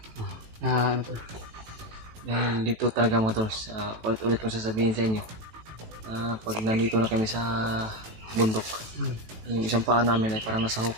ano po. dahil dito talaga, mga tol, ulit-ulit kong sasabihin sa inyo, pag nandito na kami sa bundok, yung isang paa namin ay parang nasa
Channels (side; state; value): left; late; 18 ms